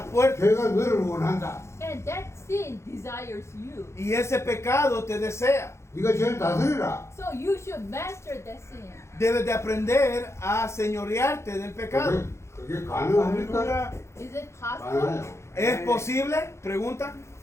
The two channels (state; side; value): late; right; 0.13 ms